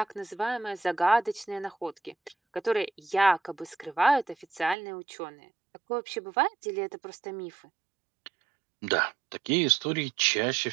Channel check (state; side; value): drops out; left; at 4.8 s